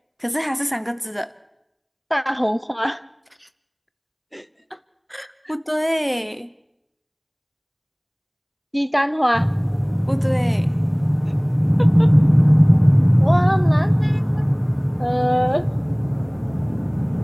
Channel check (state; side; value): identical; both; correlation 1.00